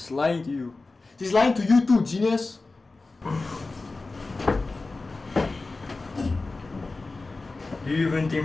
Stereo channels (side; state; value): right; quieter; 3.5 dB